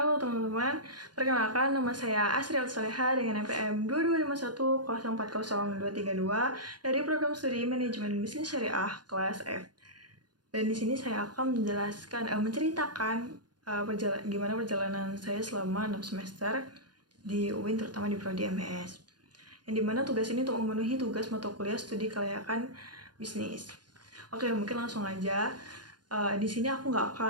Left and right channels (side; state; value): left; late; 0.70 ms